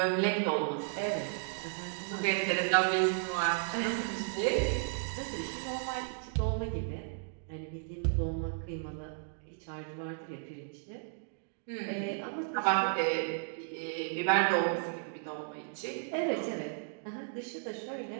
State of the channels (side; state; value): left; silent; digital silence